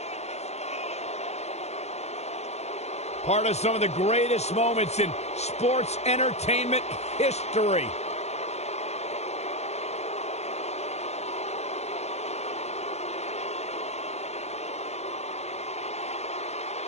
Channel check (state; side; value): late; right; 0.31 ms